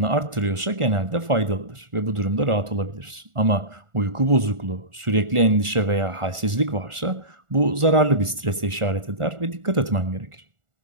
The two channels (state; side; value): late; left; 1.4 ms